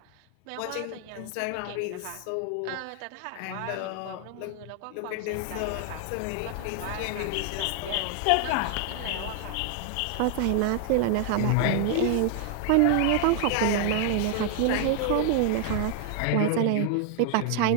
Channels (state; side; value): different; both; correlation 0.00